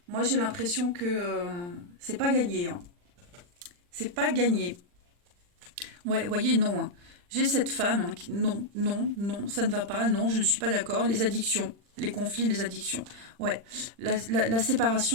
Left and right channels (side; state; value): left; late; 40 ms